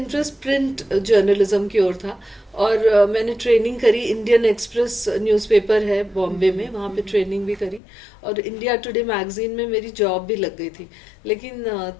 प्रिंट जर्नलिज्म की ओर था। और मैंने ट्रेनिंग करी, इंडियन एक्सप्रेस न्यूज़पेपर है बॉम्बे में, वहाँ पे ट्रेनिंग भी करी। और इंडिया टुडे मैगजीन में मेरी जॉब भी लग गई थी। लेकिन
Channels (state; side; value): drops out; right; at 7.8 s